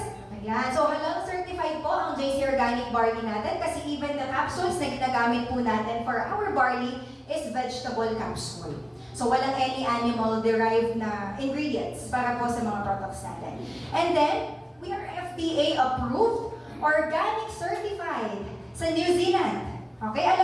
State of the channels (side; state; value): both; identical; correlation 1.00